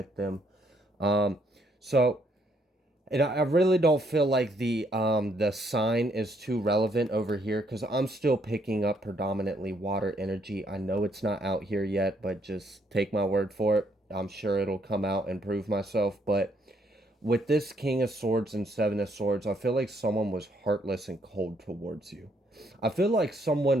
them. So and I really don't feel like the sign is too relevant over here because I'm still picking up predominantly water energy. I know it's not out here yet, but just take my word for it. I'm sure it'll come out and prove myself. But with this King of Swords and Seven of Swords, I feel like someone was heartless and cold towards you. I feel like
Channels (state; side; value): normal; both; correlation 0.71